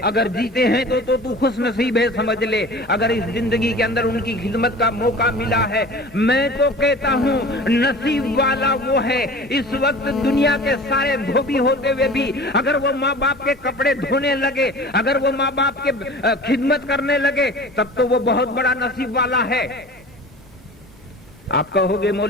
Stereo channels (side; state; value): both; normal; correlation 0.40